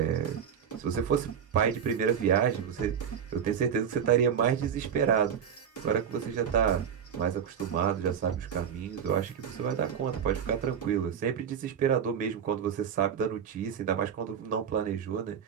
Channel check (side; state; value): left; quieter; 8.0 dB